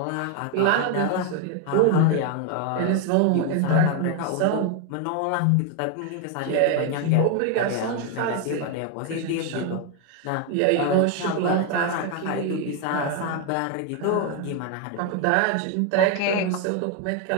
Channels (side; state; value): both; different; correlation 0.01